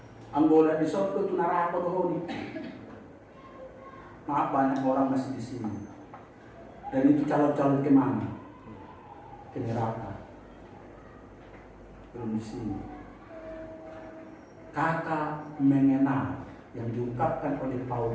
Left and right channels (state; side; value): identical; both; correlation 1.00